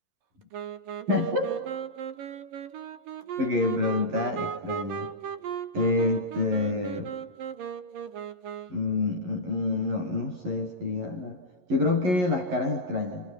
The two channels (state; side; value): late; left; 11 ms